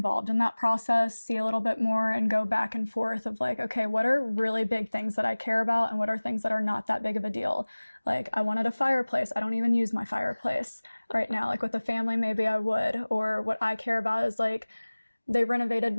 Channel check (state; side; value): inverted; both; correlation -1.00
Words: in that process, see a little bit more and go back and forth of like, okay, what are really big things that I care about and what are things that are not that big of a deal? Like I wanted a fireplace. I don't even use my fireplace right now. Like with a family, maybe I would. Or what I care about is like, they renovated